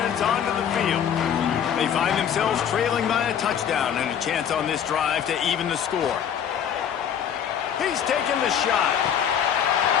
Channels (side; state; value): right; quieter; 8.6 dB